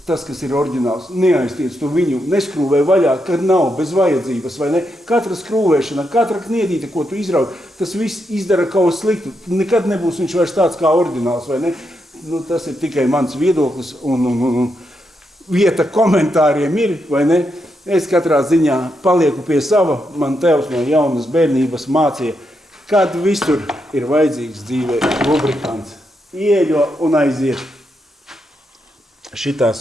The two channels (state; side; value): normal; both; correlation 0.82